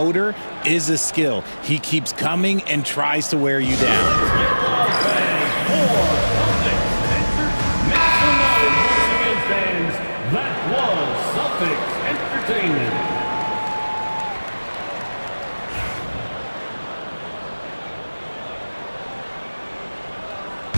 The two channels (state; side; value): inverted; both; correlation -1.00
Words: is a skill. He keeps coming and tries to wear you down. That was Celtics Entertainment.